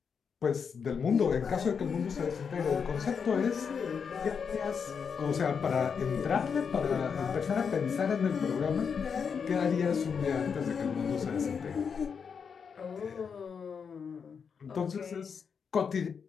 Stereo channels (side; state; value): right; quieter; 6.4 dB